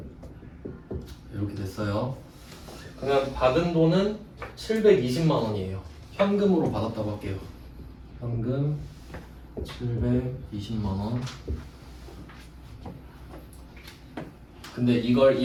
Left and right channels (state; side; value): identical; both; correlation 1.00